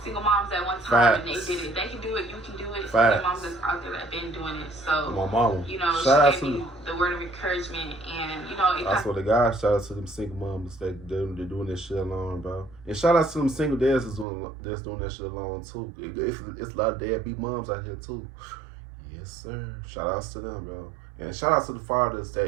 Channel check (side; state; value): left; drops out; at 14.2 s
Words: single moms at one time, and they did it. They can do it. You can do it. There's moms that's out there that have been doing it. So, my mama, you know, shout she gave me the word of encouragement, and you know, I swear to God, shout out to them single moms that they're doing this shit alone, bro. And shout out to them single dads that's doing that shit alone too. It's a lot of deadbeat moms out here too. Yes, sir. Shout outs to them, bro. And shout out to the fathers